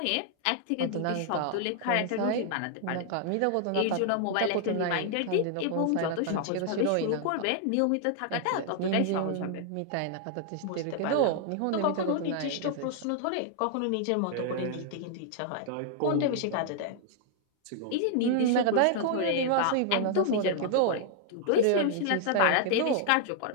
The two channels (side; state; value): both; different; correlation -0.01